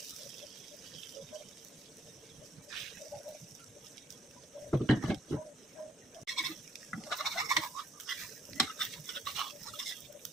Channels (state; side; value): normal; both; correlation 0.66